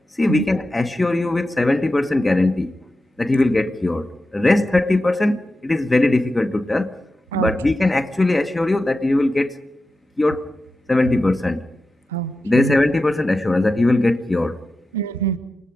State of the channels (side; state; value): both; normal; correlation 0.92